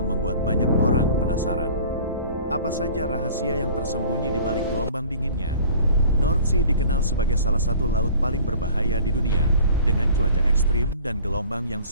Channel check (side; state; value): both; inverted; correlation -0.47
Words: membuat banyak orang penasaran. Apa saja rahasia yang tersembunyi di balik gelombang dinginnya? North Sea dikenal sebagai salah satu laut paling berbahaya di dunia, dengan cuaca ekstrim dan gelombang yang